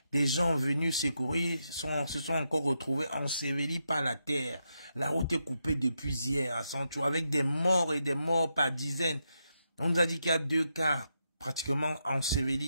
Des gens venus secourir se sont encore retrouvés ensevelis par la terre. La route est coupée depuis hier à Sancho, avec des morts et des morts par dizaines. On nous a dit qu'il y a 2 cas pratiquement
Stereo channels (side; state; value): both; inverted; correlation -0.83